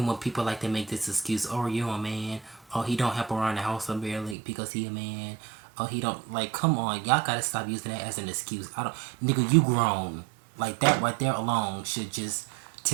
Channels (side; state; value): left; drops out; at 4.4 s